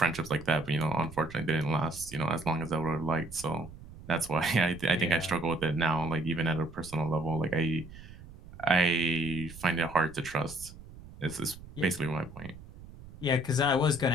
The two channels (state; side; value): noise; right; rumble, 17 dB below the sound